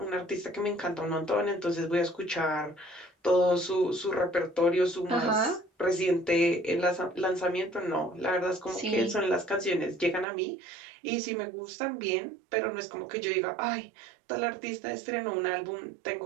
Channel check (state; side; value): drops out; left; at 10.2 s